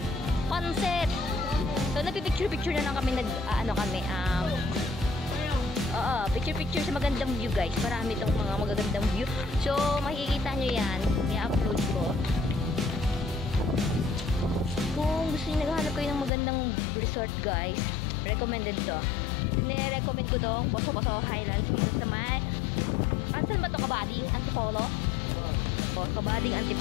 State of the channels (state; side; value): drops out; right; at 16.3 s